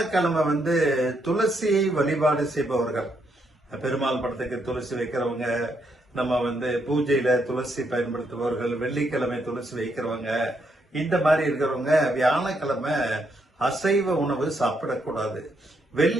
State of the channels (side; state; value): both; normal; correlation 0.77